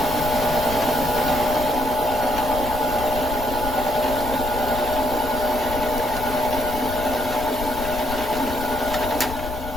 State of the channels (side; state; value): left; noise; rumble, 9 dB below the sound